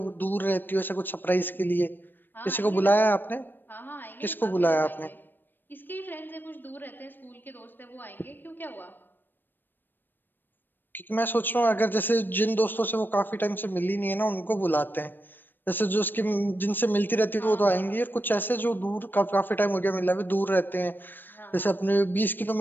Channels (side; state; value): right; late; 0.093 ms